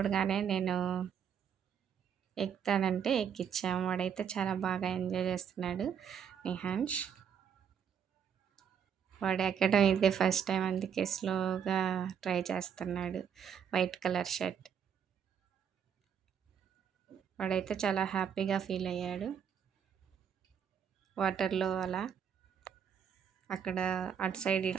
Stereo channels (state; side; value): quieter; left; 7.8 dB